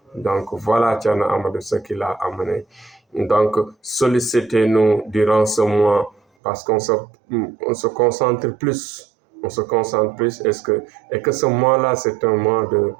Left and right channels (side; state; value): left; drops out; at 6.2 s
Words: Donc voilà Thierno Amadou ce qu'il a amené. Donc sollicitez-nous durant ce mois parce qu'on se concentre plus. On se concentre plus et que ce mois-là, c'est un mois